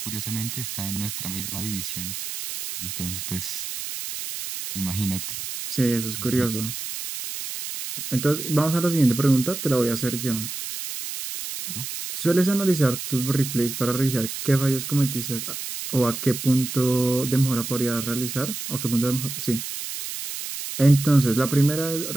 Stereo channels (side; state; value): right; noise; hiss, 7 dB below the sound